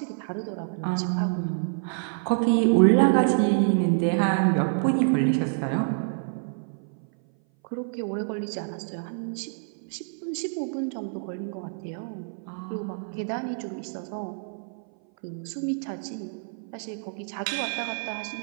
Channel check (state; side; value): silent; left; 58 dB below the other